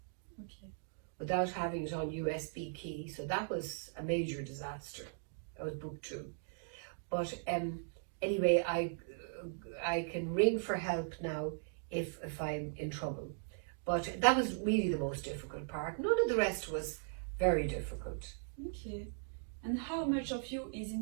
without having it on USB key. So that was a major disaster. That was book 2. But anyway, I can ring for help now if I'm in trouble. But that was really the most difficult part. None of the rest was very difficult. Okay. And how much of you is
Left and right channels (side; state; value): left; silent; digital silence